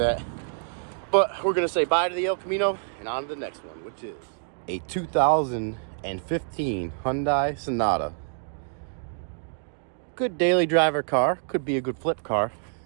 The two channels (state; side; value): silent; left; digital silence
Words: But we're gonna say bye to the El Camino and on to the next one, which is a 2015 Hyundai Sonata. Good daily driver car, could be a good flip car.